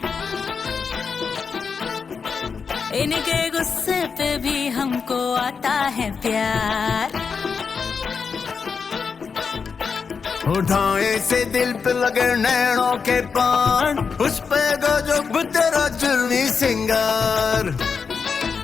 इनके गुस्से पे भी हमको आता है प्यार। उठाए से दिल पे लगे नैनों के पान, उस पे गजब तेरा जुल्मी सिंगार।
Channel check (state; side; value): quieter; right; 5.6 dB